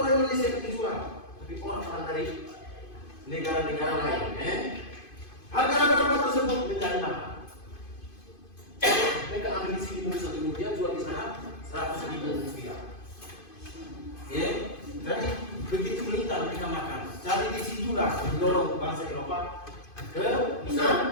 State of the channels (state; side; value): late; right; 2.5 ms